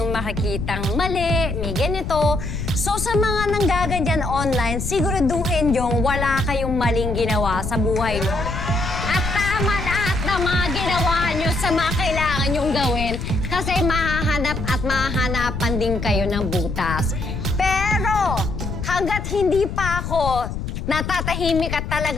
makikitang mali, may ganito. So sa mga nanggaganyan online, siguraduhin yung wala kayong maling ginawa sa buhay nyo. At tama lahat ng mga ginawa nyo sa mga kailangan nyong gawin kasi mahahanap at mahahanapan din kayo ng butas. Pero hanggat hindi pa ako natatahimik at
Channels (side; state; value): left; noise; rumble, 5 dB below the sound